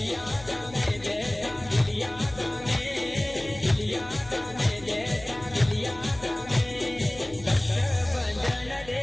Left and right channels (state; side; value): noise; left; hum, 19 dB below the sound